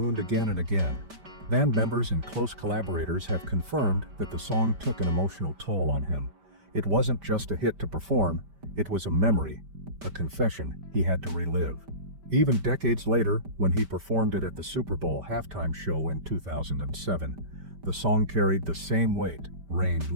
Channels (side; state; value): left; late; 5.1 ms